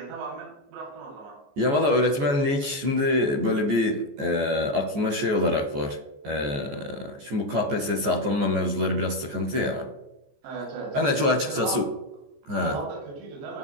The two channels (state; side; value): late; left; 14 ms